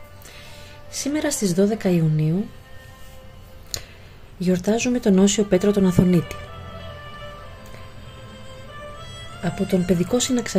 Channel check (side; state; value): both; identical; correlation 1.00